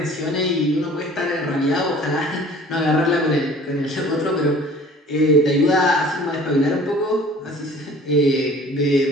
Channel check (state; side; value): normal; both; correlation 0.49